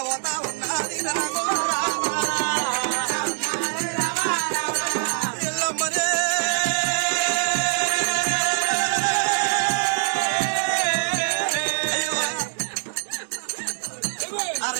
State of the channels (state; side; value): silent; left; digital silence